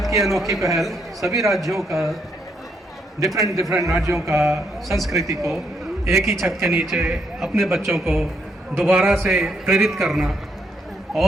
की अनोखी पहल सभी राज्यों का, डिफरेंट राज्यों का संस्कृति को एक ही छत के नीचे अपने बच्चों को दोबारा से प्रेरित करना,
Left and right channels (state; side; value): normal; both; correlation 0.75